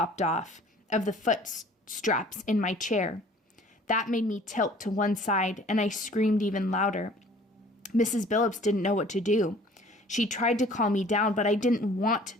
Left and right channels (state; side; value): normal; both; correlation 0.51